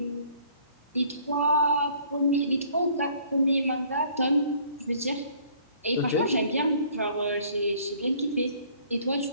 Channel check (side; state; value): both; inverted; correlation -0.57